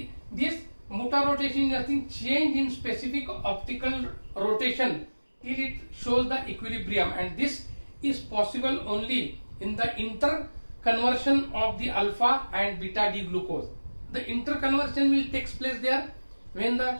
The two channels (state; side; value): inverted; both; correlation -1.00